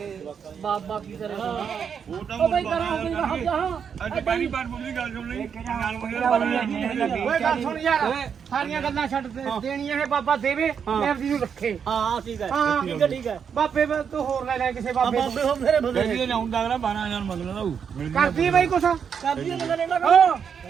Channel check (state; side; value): quieter; left; 7.2 dB